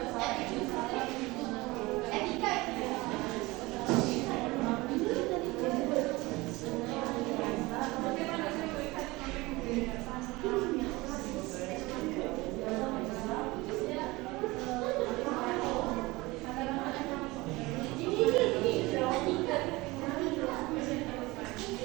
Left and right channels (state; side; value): quieter; left; 21.9 dB